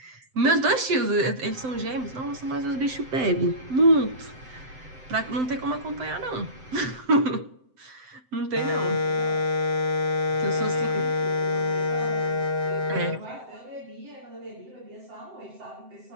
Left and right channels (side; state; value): left; late; 7.8 ms